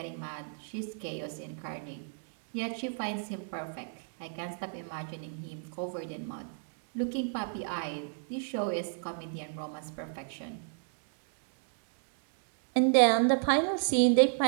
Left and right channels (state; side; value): silent; left; digital silence